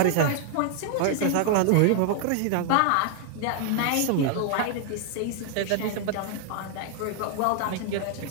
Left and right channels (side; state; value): both; different; correlation 0.00